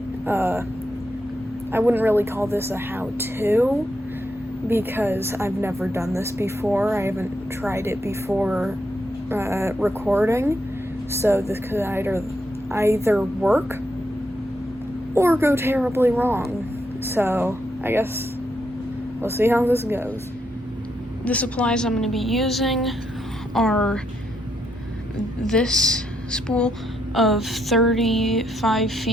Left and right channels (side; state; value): both; normal; correlation 0.79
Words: I wouldn't really call this a how-to because I've never done this before. I haven't tried it before recording, so this could either work or go terribly wrong. So I guess we'll see how this goes. The supplies I'm going to be using are this spool of 35